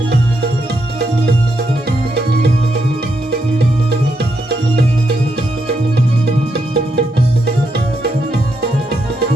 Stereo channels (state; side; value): normal; both; correlation 0.80